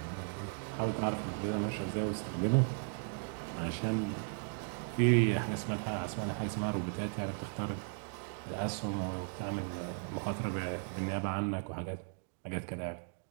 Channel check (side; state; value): left; silent; 54 dB below the other